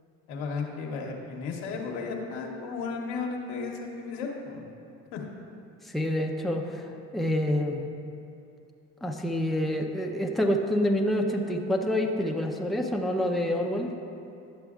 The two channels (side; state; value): both; normal; correlation 0.66